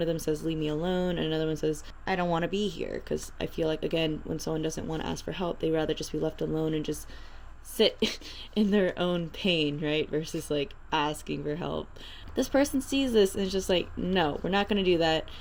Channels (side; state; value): both; identical; correlation 1.00